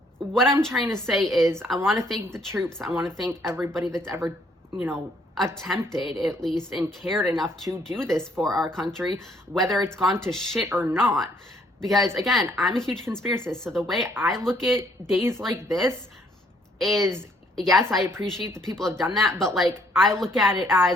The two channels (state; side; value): normal; both; correlation 0.66